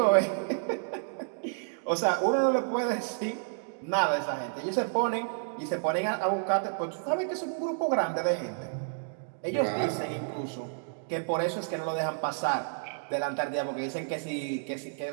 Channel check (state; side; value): silent; left; digital silence